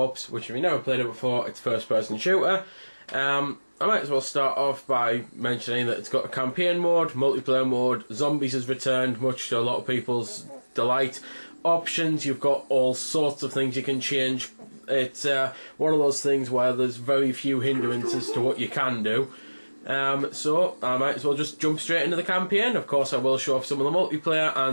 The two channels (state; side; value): inverted; both; correlation -1.00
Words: which if you've never played it before, it's a first person shooter. I might as well start off by mentioning that it's got a campaign mode, multiplayer mode, zombies has returned, much to a lot of people's delight. Options, you've got all sorts of things you can change. It's one of those things where there's very few hindrances to what you can do. So I might as well just jump straight into the campaign. Of course I will show off some of the multiplayer